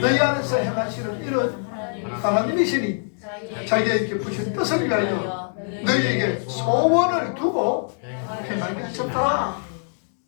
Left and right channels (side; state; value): right; silent; digital silence